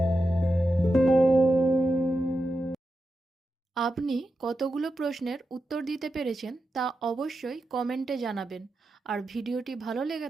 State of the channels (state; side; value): normal; both; correlation 0.89